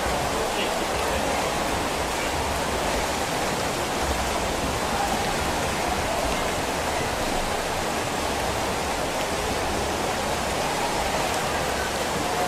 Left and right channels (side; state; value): both; identical; correlation 1.00